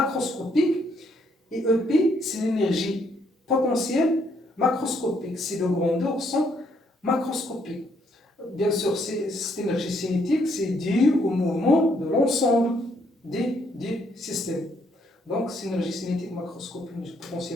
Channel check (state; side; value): normal; both; correlation 0.71